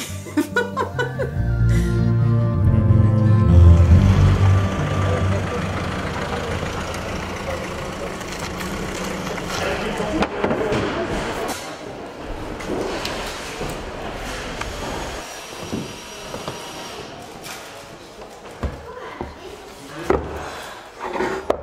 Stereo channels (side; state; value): both; identical; correlation 1.00